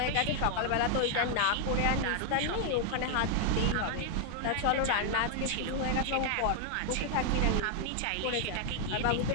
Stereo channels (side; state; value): both; different; correlation 0.00